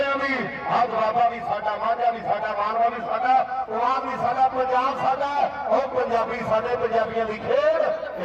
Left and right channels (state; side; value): identical; both; correlation 1.00